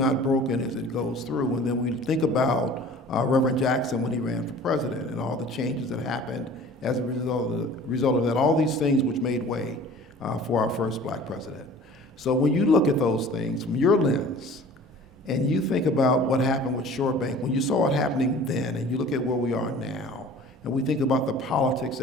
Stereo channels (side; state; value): both; normal; correlation 0.45